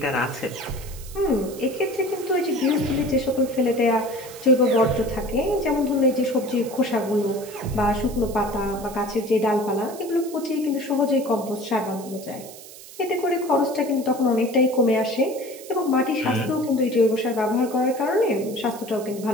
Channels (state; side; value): noise; right; hiss, 17 dB below the sound